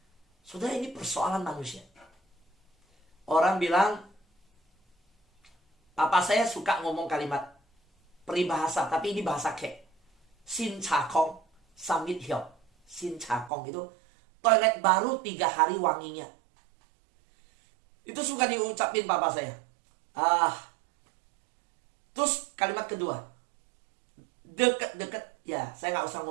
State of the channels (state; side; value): drops out; left; at 13.5 s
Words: Saudara, ini persoalan manusia. Orang bilang, papa saya suka ngomong kalimat peribahasa, tapi ini bahasa kek. Sin cakong, samit hiop. Sin cakong itu toilet baru 3 hari wanginya. Itu suka diucapin papa saya. Terus kalimat kedua, deket-deket, ya saya nggak usah